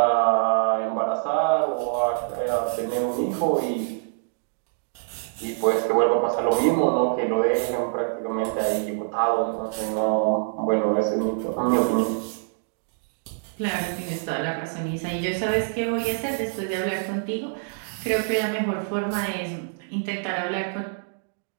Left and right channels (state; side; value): silent; left; digital silence